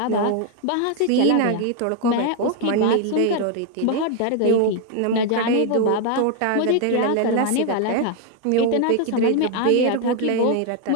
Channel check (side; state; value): both; different; correlation 0.00